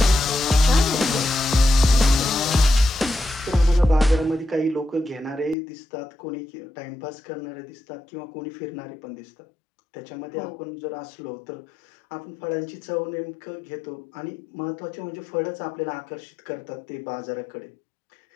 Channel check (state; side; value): drops out; right; at 5.6 s